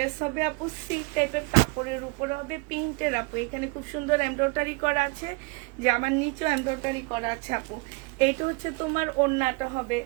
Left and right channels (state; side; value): quieter; left; 28.7 dB